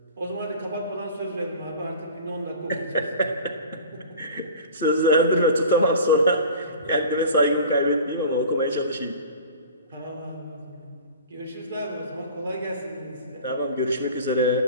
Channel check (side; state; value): both; inverted; correlation -0.41